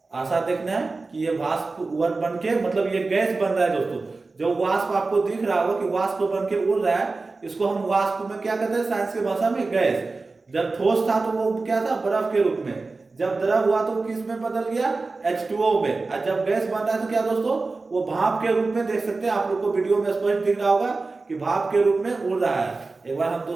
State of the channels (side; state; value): left; quieter; 3.7 dB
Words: आशा देखना है कि ये वाष्प बन के, मतलब ये गैस बन रहा है दोस्तों। जो वाष्प आपको दिख रहा होगा कि वाष्प बन के उड़ रहा है, इसको हम वाष्प में क्या कहते हैं साइंस की भाषा में, गैस। जब ठोस था तो वो क्या था, बर्फ के रूप में। जब द्रव हुआ तो किस में बदल गया, H2O में। और जब गैस बन रहा है तो क्या दोस्तों, वो भाप के रूप में, देख सकते हैं आप लोग को वीडियो में स्पष्ट दिख रहा होगा कि भाप के रूप में उड़ रहा है। एक बार हम